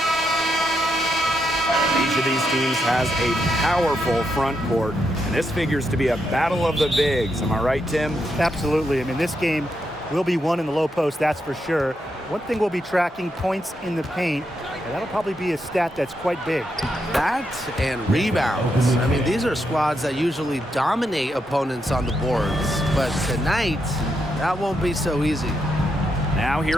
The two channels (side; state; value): both; normal; correlation 0.82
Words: Each of these teams has a powerful front court, and this figures to be a battle of the bigs. Am I right, Tim? Absolutely. I mean, this game will be won in the low post, that's for sure. One thing we'll be tracking, points in the paint, and that'll probably be a stat that's quite big. That and rebounds. I mean, these are squads that usually dominate opponents on the boards, but tonight, that won't be so easy. Now